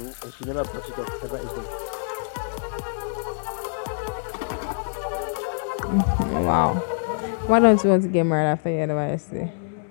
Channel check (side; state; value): right; silent; digital silence